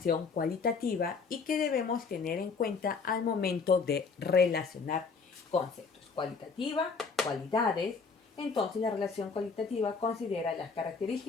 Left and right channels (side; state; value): right; quieter; 5.0 dB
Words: cualitativa y que debemos tener en cuenta al momento de relacionar conceptos. Cualitativa, cualidades. Entonces la relación cualitativa considera las